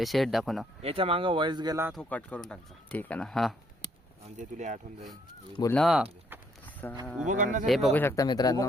शेड दाखव ना. याच्या मागं वॉइस गेला तो कट करून टाकचा. ठीक आहे ना. हा म्हणजे तुला आठवण जाईल. बोल ना. उभं करणं हे बघू शकता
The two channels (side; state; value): both; normal; correlation 0.69